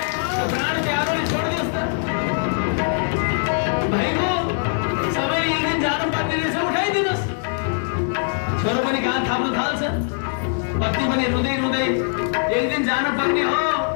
प्राण प्यारोले छोडिदियोस् त। भाइको सबै एक दिन जानुपर्ने रहेछ, उठाइदिनुहोस्। छोरो पनि कहाँ थाप्न थाल्छ, पत्नी पनि रुँदै रुँदै एक दिन जानुपर्ने हो,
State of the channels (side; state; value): right; silent; digital silence